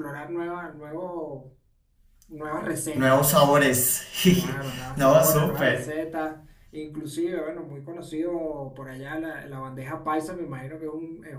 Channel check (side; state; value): both; identical; correlation 1.00